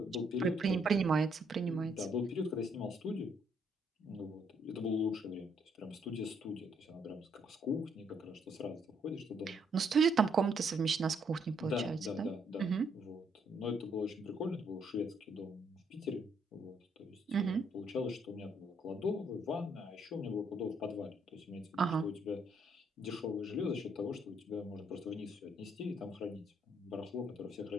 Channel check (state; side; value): normal; both; correlation 0.71